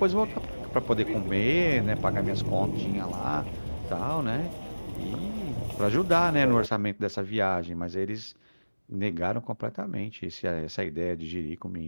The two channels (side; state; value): both; inverted; correlation -1.00